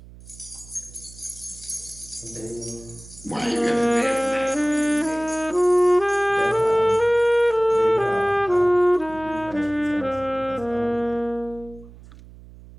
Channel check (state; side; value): noise; right; hum, 20 dB below the sound